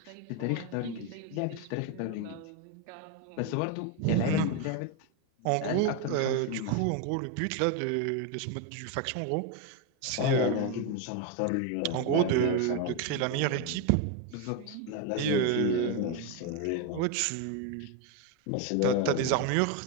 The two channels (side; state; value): both; different; correlation 0.02